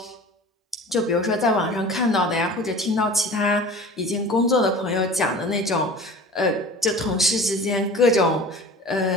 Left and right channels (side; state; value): both; normal; correlation 0.40